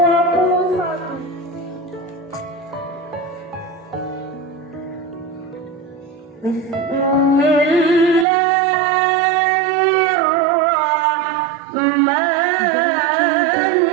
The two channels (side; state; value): left; drops out; at 8.2 s